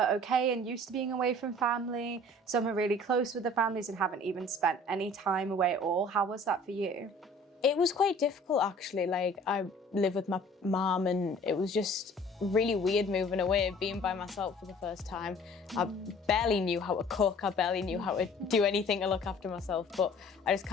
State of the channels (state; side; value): normal; both; correlation 0.50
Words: okay and used to being away from family, some are really close with their families and haven't even spent any time away at all. How was that for you? It was quite difficult, actually. I live with my mum, and it was just really weird moving away, being by myself for the first time. I barely knew how to cook, I barely knew how to do anything to look after myself, but I just